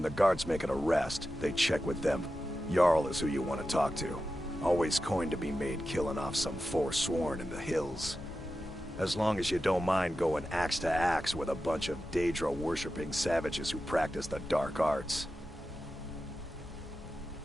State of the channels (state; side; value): normal; both; correlation 0.92